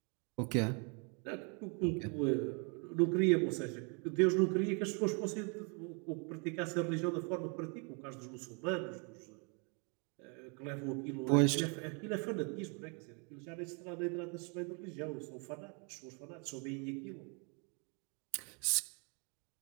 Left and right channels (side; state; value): left; quieter; 35.8 dB